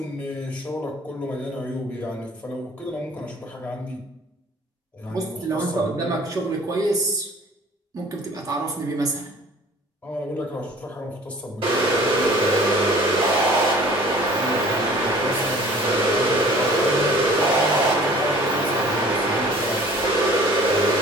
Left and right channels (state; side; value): normal; both; correlation 0.49